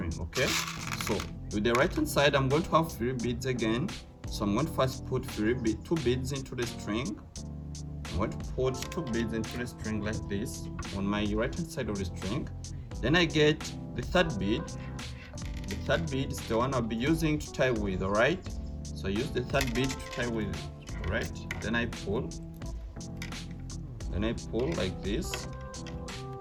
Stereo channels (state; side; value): identical; both; correlation 1.00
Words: Okay, so with the right hand side I'm going to have 3 beads again. So I'm going to first put 2 beads into the string. I'm going to put 2 beads into the string like this on my right hand side of the string. Then I get the 3rd bead. The 3rd bead is the one I'll be using to tie with. All right, so I use the 3rd bead to tie with. All right, then I pull. Then I pull like this.